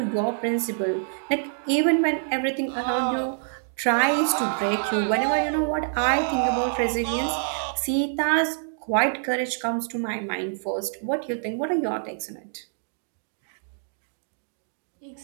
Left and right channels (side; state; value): left; silent; digital silence